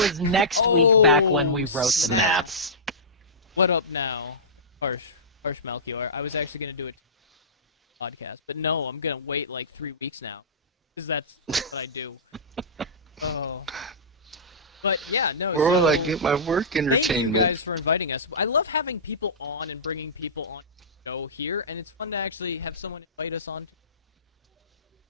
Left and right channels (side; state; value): both; normal; correlation -0.20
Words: next week back when we wrote the snap. notes. What up now? Harsh Melchior. I was actually gonna do it podcast, but no, I'm gonna wait like 3 weeks now, because that's what I do. Oh, but yeah, no. Or So I get my work entertainment. thank you guys for inviting us. I love having people on and bringing people on the show here, and it's fun to actually have someone invite us on.